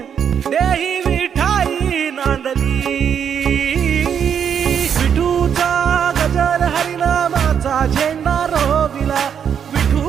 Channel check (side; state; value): left; quieter; 8.0 dB